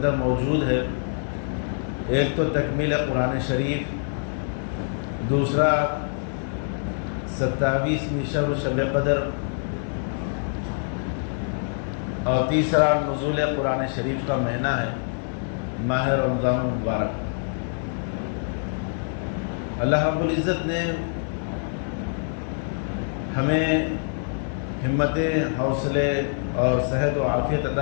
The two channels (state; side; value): silent; right; 61 dB below the other